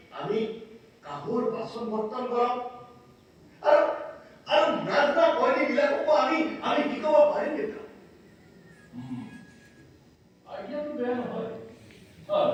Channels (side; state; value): both; identical; correlation 1.00